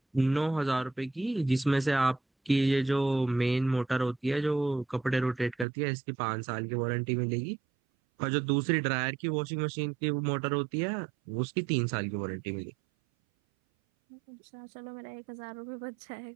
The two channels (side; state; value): left; drops out; at 5.7 s